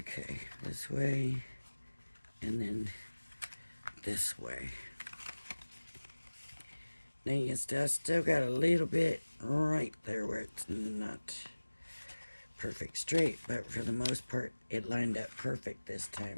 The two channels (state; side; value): inverted; both; correlation -1.00